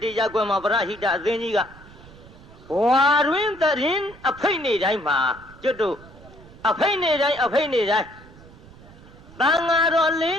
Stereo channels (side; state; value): right; noise; rumble, 21 dB below the sound